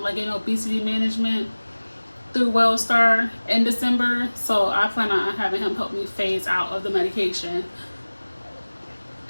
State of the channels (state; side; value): inverted; both; correlation -1.00